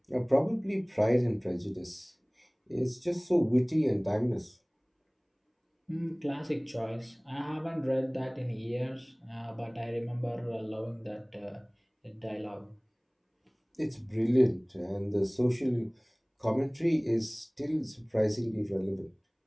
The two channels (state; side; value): identical; both; correlation 1.00